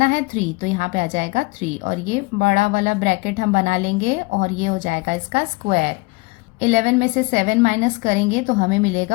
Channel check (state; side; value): quieter; right; 25.9 dB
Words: है 3, तो यहाँ पे आ जाएगा 3 और ये बड़ा वाला ब्रैकेट हम बना लेंगे और ये हो जाएगा इसका स्क्वायर। 11 में से 7 माइनस करेंगे तो हमें